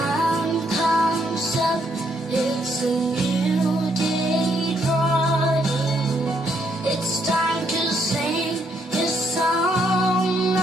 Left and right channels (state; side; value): normal; both; correlation 0.73